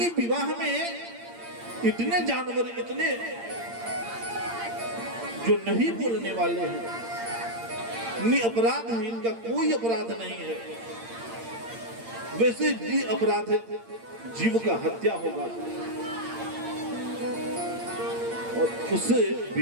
विवाह में इतने जानवर, इतने जो नहीं बोलने वाले हैं, निरपराध है, इनका कोई अपराध नहीं है, वैसे भी अपराध है, जीव का हत्या होगा और उससे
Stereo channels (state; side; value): late; left; 8.7 ms